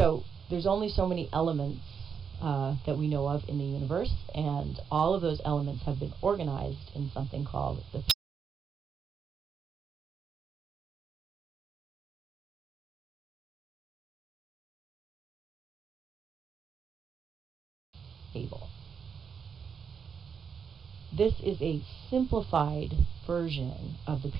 there's only so many elements that we know of in the universe, and all of those elements have been organized in something called the table. This is a simplified version of the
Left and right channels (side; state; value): left; quieter; 6.6 dB